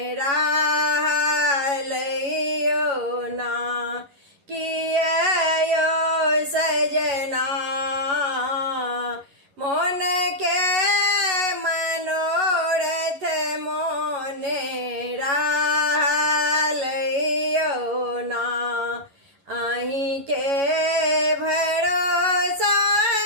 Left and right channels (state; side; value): late; left; 11 ms